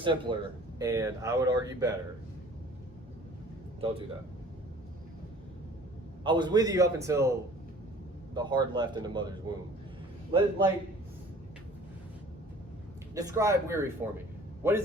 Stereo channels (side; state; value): both; normal; correlation 0.49